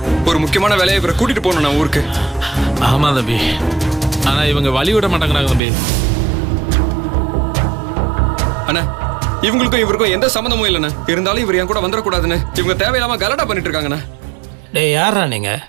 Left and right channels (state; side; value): drops out; left; at 5.6 s